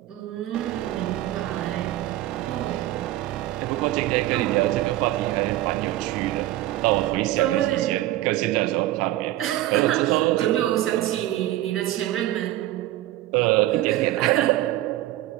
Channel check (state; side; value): quieter; left; 15.2 dB